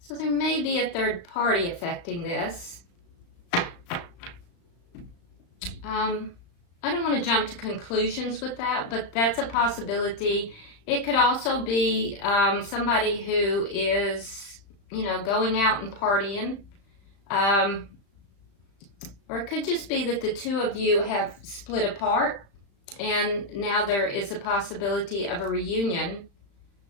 So there may be a third party affecting this. I don't want to jump to conclusions with that, but that's a possibility. It could also be somebody who is, going out and partying. Or it could just be that the two of you have split apart, and now there is a possibility of a reunion.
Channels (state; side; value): late; right; 35 ms